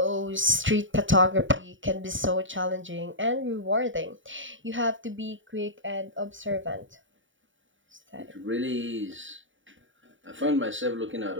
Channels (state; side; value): late; left; 0.56 ms